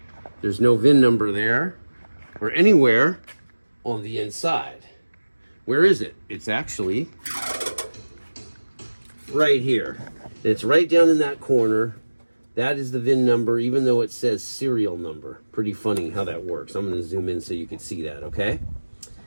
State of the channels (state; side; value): inverted; both; correlation -1.00